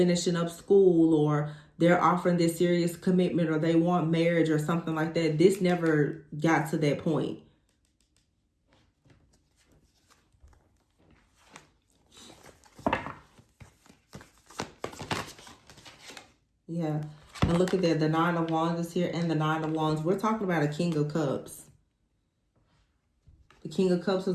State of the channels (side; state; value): both; identical; correlation 1.00